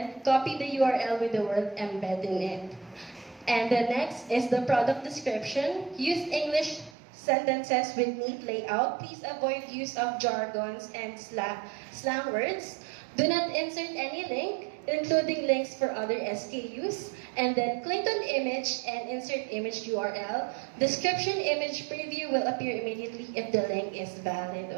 Copy the URL with the word embed in it. And the next is the product description. Use English sentences with neat layout. Please avoid use of jargons and slang words. Do not insert any link, including links for other SKUs. And then click on image and insert image URL. Description image preview will appear immediately if the link is valid.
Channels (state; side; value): drops out; left; at 6.9 s